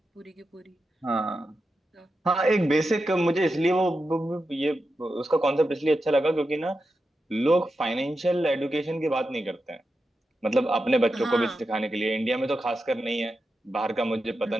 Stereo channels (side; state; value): both; normal; correlation 0.89